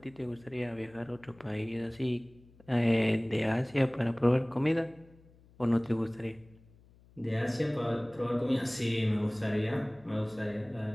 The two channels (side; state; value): left; noise; hum, 27 dB below the sound